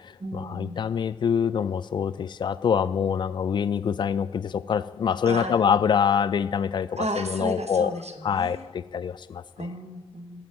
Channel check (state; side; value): quieter; right; 6.4 dB